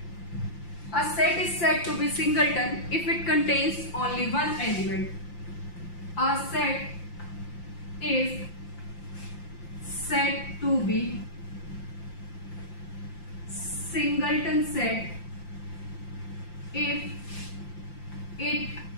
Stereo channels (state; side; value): late; right; 5.8 ms